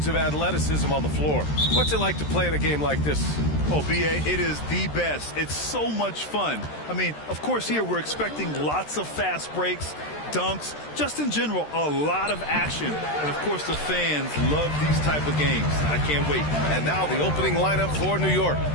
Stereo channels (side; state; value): right; late; 13 ms